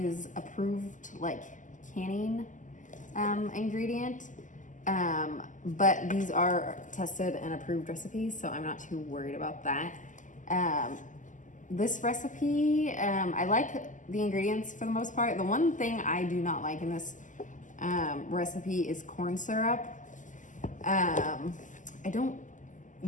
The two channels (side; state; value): right; late; 0.37 ms